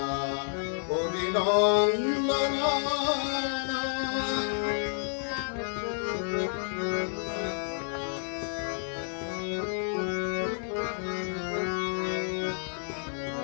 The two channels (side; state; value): right; silent; digital silence